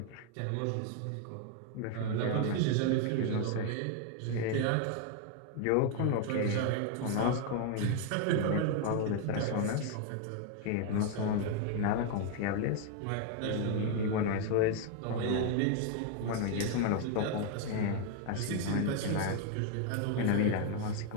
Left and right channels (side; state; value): both; different; correlation 0.01